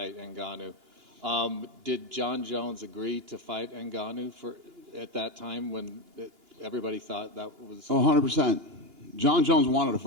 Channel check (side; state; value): left; late; 2.9 ms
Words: Ngannou. Did John Jones agree to fight Ngannou at that time when everybody thought that was? Oh, 100%. John Jones wanted to